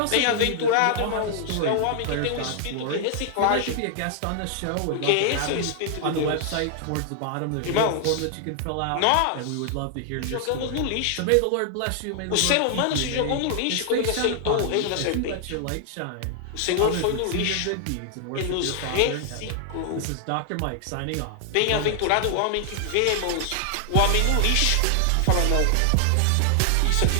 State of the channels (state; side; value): different; both; correlation 0.00